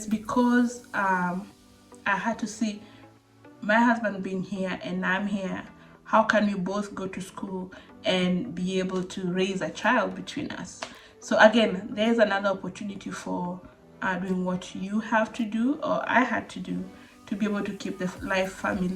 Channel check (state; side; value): identical; both; correlation 1.00